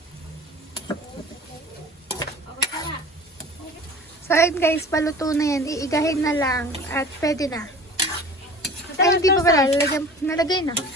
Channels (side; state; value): both; normal; correlation 0.42